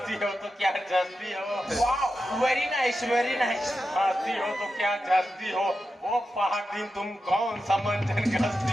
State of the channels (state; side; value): normal; both; correlation 0.90